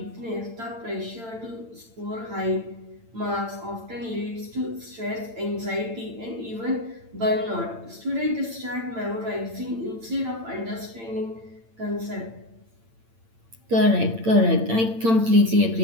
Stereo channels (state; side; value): late; left; 8.8 ms